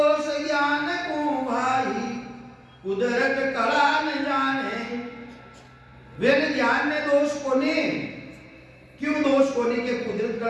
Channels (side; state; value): both; identical; correlation 1.00